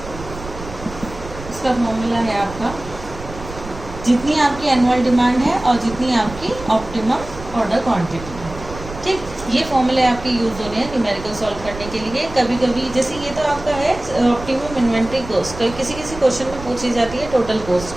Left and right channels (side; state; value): right; noise; rumble, 13 dB below the sound